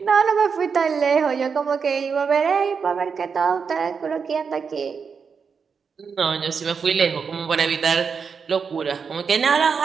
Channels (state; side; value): quieter; left; 5.9 dB